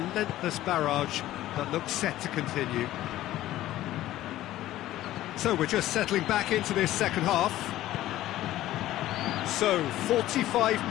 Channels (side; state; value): right; quieter; 14.6 dB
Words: barrage that looks set to continue. So we're just settling back into this second half. So 45